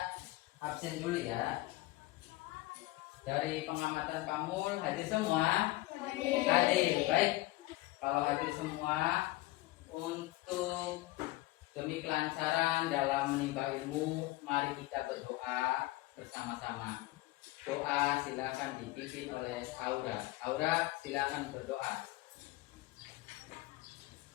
absen dulu ya. Dari pengamatan Pak Mul, hadir semua? Hadir, baik. Kalau hadir semua, untuk demi kelancaran dalam menimba ilmu, mari kita berdoa bersama-sama. Doa silakan dipimpin oleh Aura. Aura, silakan berdoa.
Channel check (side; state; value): right; quieter; 18.9 dB